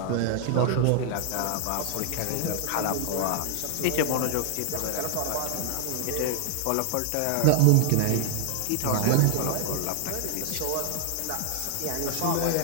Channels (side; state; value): both; different; correlation -0.01